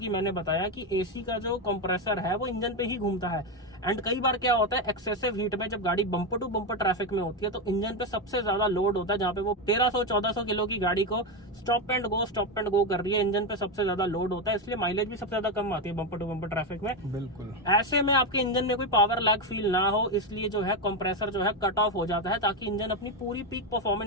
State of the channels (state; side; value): normal; both; correlation 0.10